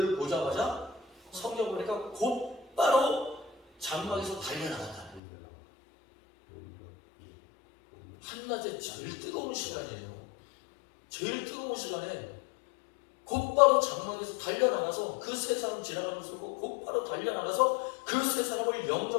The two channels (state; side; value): drops out; right; at 5.2 s